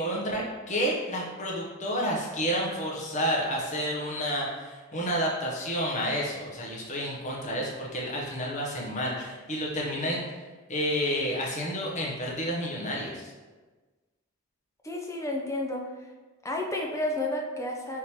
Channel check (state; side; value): normal; both; correlation 0.08